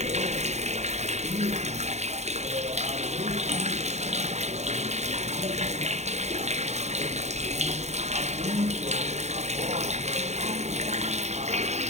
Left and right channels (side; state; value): left; late; 0.32 ms